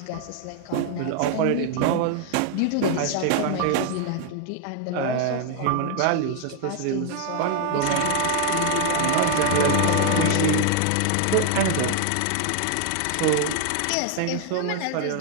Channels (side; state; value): both; different; correlation 0.01